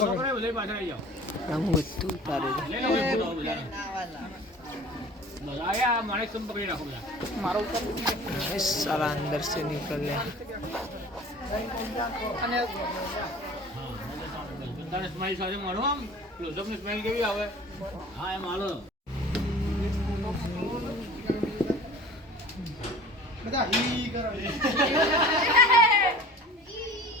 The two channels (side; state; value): both; normal; correlation 0.43